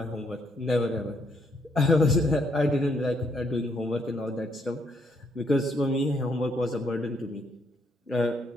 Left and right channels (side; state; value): both; normal; correlation 0.73